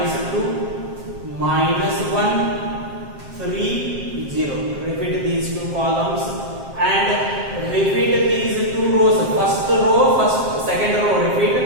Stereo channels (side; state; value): left; late; 7.6 ms